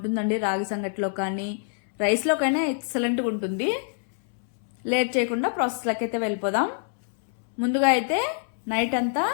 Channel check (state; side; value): silent; right; 61 dB below the other